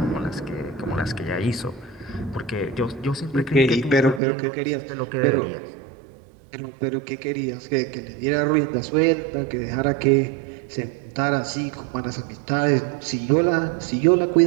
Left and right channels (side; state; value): left; drops out; at 4.2 s